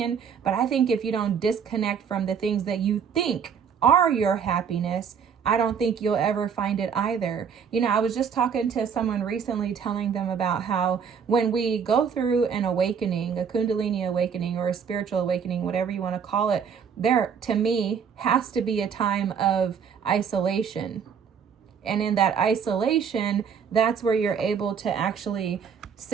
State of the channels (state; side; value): quieter; left; 7.0 dB